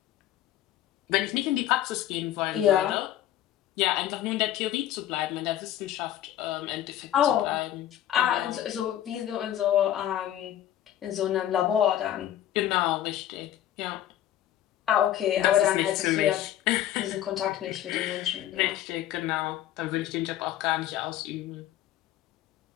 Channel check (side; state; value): right; quieter; 12.0 dB